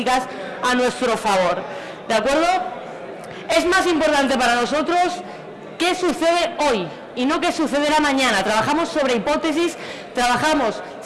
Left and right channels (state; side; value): identical; both; correlation 1.00